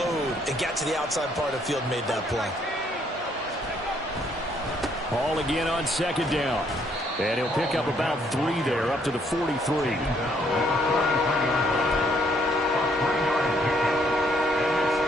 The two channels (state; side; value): normal; both; correlation 0.68